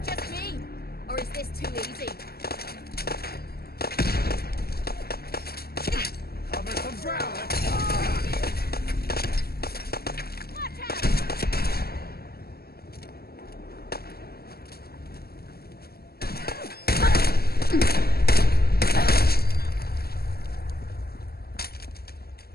just me? Or is this too easy? Cover some ground. Watch out!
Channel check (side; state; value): right; late; 0.45 ms